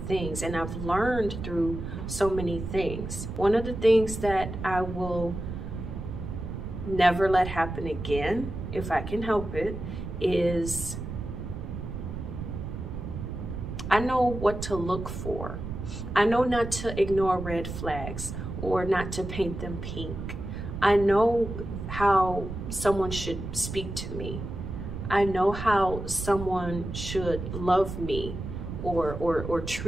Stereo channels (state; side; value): noise; right; rumble, 7 dB below the sound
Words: things, and I've learned through so many things. One of the things that I will never let happen again, if I can help it, is I know what to look for. I know not to ignore red flags or not to paint them pink. I know how someone should speak to me. I know how someone should love me or